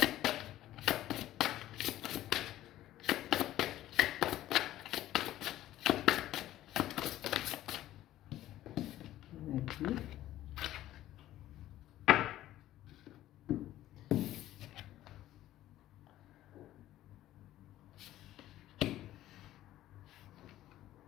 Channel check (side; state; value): right; quieter; 14.0 dB